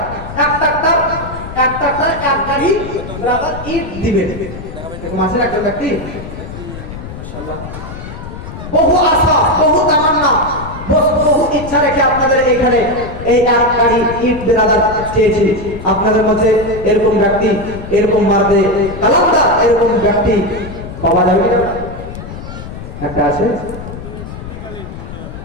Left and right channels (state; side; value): noise; left; rumble, 11 dB below the sound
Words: ট্রাক্টর 1 গাড়ি ব্রাদার ইট দিবে, এরকম আছে একজন ব্যক্তি। মাশাআল্লাহ, বহু আশা, বহু তামান্না, বহু ইচ্ছা রেখে আপনাদের এখানে এই 1 গাড়ি ইট ব্রাদার চেয়েছি। আপনাদের মধ্যে এরকম ব্যক্তি, এরকম মারদে কালামদার এরকম ব্যক্তি পাওয়া যাবে কি? একটা আছে।